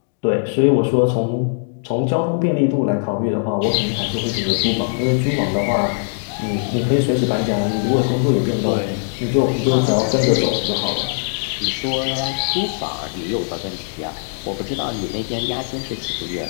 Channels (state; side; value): silent; right; digital silence